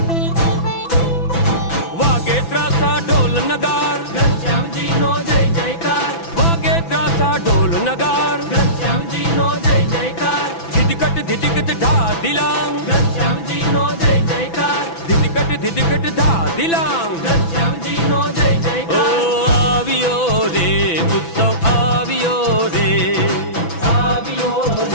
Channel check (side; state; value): right; late; 6.0 ms